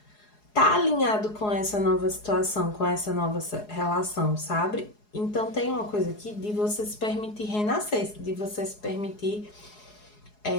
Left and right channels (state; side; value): late; right; 4.8 ms